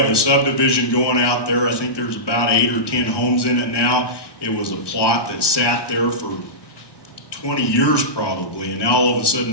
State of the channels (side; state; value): right; late; 1.2 ms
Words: a subdivision going out there. I think there's about 8 or 10 homes in it now. It was a plot that sat there for 20 years probably, and now all of a sudden